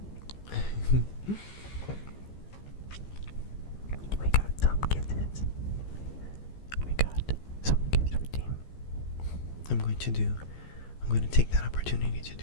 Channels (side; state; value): right; late; 15 ms